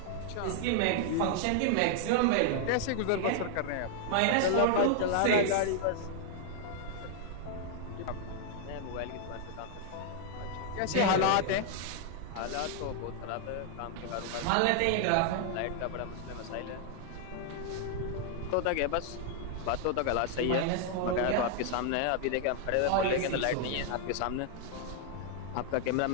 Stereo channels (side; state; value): both; different; correlation 0.00